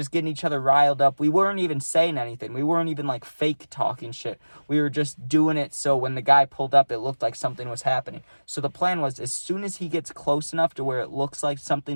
getting each other riled up. We weren't even saying anything. We weren't even, like, fake talking shit. We were just doing it so when the guy pulled up, it looked like something was happening. So the plan was, as soon as he gets close enough to where it looks like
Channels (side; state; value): both; inverted; correlation -1.00